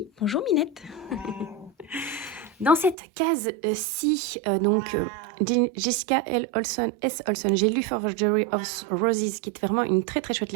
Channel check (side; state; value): left; drops out; at 3.0 s